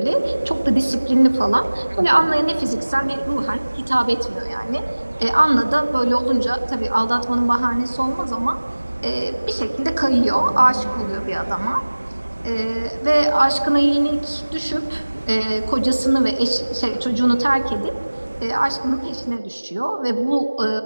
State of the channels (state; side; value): inverted; both; correlation -1.00